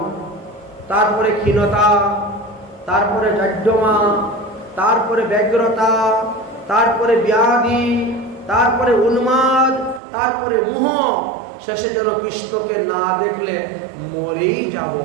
তারপরে ক্ষীণতা, তারপরে জাড্যমা, তারপরে ব্যগ্রতা, তারপরে ব্যাধি, তারপরে উন্মাদ, তারপরে মোহ, শেষে যেন কৃষ্ণকে না দেখলে মরেই যাব,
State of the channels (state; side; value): drops out; left; at 10.0 s